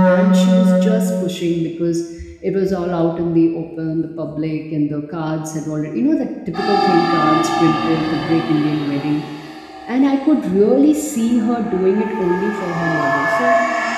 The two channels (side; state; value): both; identical; correlation 1.00